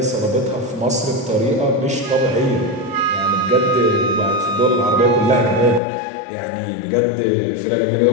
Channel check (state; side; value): drops out; right; at 5.8 s